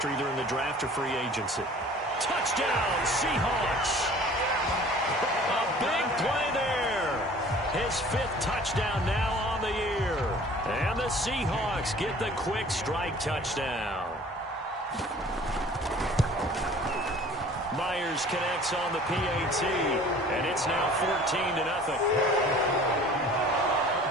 either in the draft or free agency? Touchdown, Seahawks! A big play there. His 5th touchdown now on the year. And the Seahawks get the quick strike touchdown. Myers connects on the PAT, and it's now 14-0.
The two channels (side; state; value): both; normal; correlation 0.48